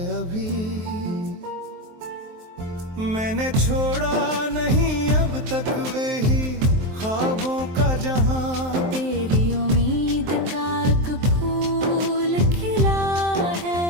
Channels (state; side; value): late; left; 23 ms